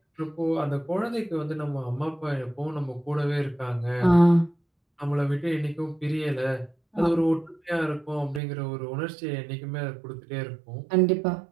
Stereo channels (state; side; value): drops out; left; at 8.4 s